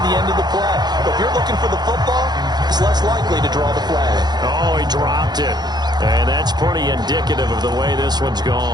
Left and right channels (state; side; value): late; left; 0.20 ms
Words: the end of the play. But if you're looking for the football, it's less likely to draw the flag. Oh, he dropped it. And that's pretty indicative of the way this one's